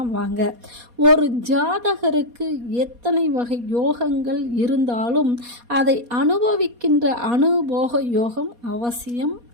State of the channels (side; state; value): left; late; 4.2 ms